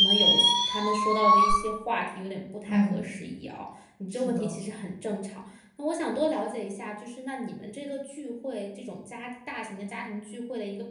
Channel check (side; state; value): both; identical; correlation 1.00